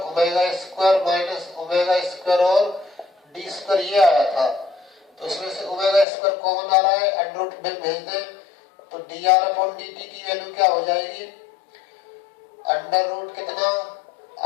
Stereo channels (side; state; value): right; drops out; at 6.1 s